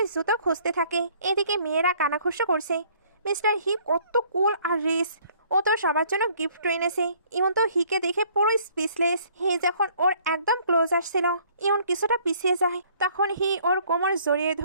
জুতো খুঁজতে থাকে। এদিকে মেয়েরা কানাঘুষো করছে, মিস্টার হি কত কুল আর রিচ, ও তো সবার জন্য গিফট এনেছে। ইউন তো হিকে দেখে পুরো স্পিচলেস। হি যখন ওর একদম ক্লোজ আসছিল, ইউন কিছুটা পিছিয়ে যায়। তখন হি ওর কোমর জড়িয়ে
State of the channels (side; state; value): both; inverted; correlation -0.60